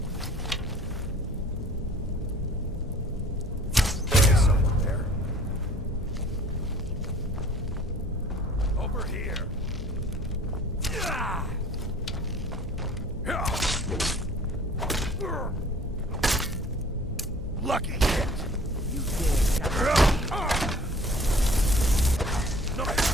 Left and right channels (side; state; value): both; normal; correlation 0.51